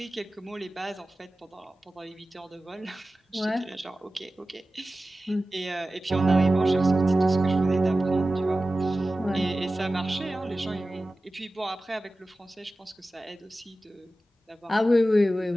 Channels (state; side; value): normal; both; correlation 0.95